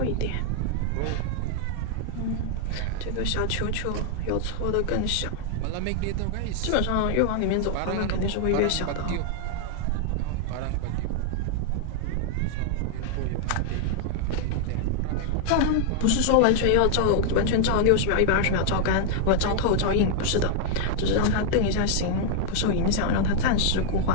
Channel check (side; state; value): both; different; correlation -0.01